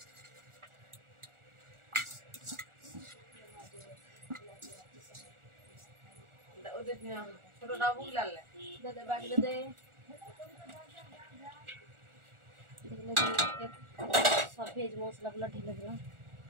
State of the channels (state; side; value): late; left; 1.4 ms